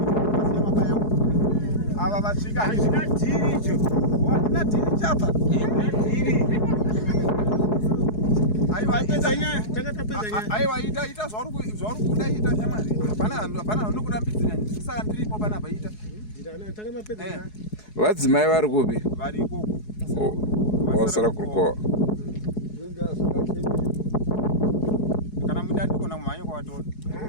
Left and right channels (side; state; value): right; late; 4.7 ms